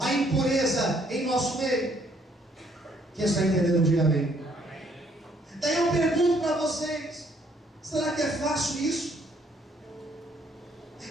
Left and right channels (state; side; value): normal; both; correlation 0.67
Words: impureza em nosso meio. Quem está entendendo, diga amém. Daí eu pergunto para vocês: será que é fácil isso?